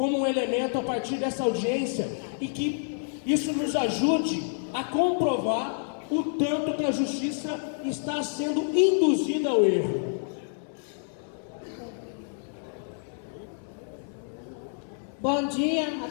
um elemento a partir dessa audiência e que isso nos ajude a comprovar o tanto que a Justiça está sendo induzida ao erro. Bom dia a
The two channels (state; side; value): silent; right; 58 dB below the other